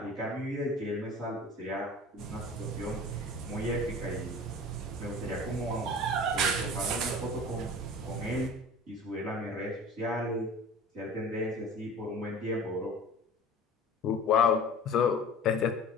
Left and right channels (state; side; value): normal; both; correlation 0.40